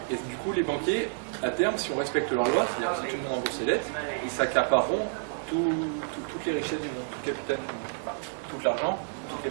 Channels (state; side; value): silent; left; digital silence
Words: Et du coup, les banquiers, à terme, si on respecte leur loi, c'est-à-dire que si tout le monde rembourse ses dettes, ils s'accapareront toutes les richesses du monde, tout le capital du monde. Enfin, tout l'argent, tout le